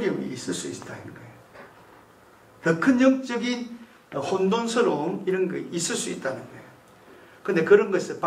있을 수 있다는 거예요. 더 큰 영적인 혼돈스러움 이런 거 있을 수 있다는 거예요. 그런데 그런 것을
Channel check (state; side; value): identical; both; correlation 1.00